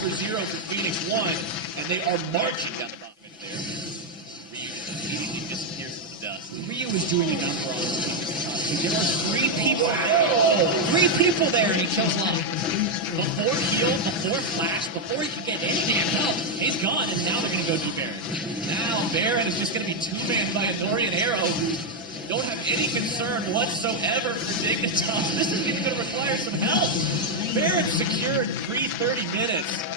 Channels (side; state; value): both; normal; correlation 0.02